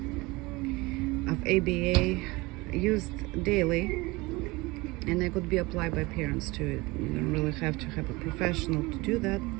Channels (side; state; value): left; quieter; 22.9 dB